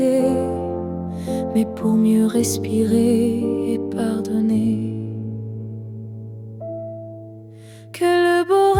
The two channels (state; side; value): identical; both; correlation 1.00